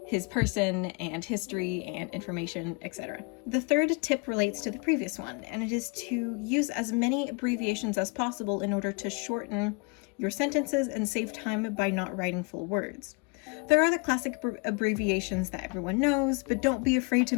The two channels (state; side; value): quieter; right; 31.4 dB